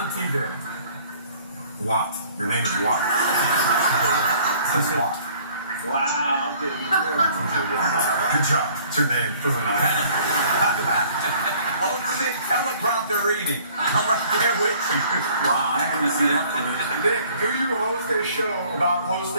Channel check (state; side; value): inverted; both; correlation -0.55